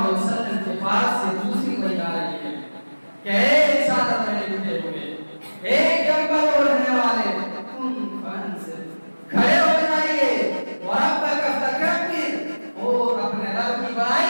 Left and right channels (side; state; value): both; inverted; correlation -1.00